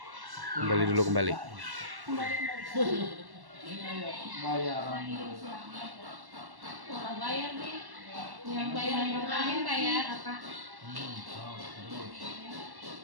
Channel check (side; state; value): left; late; 1.1 ms